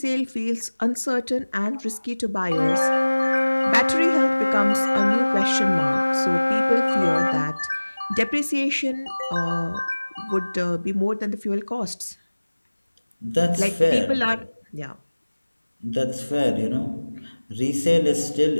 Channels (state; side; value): inverted; both; correlation -1.00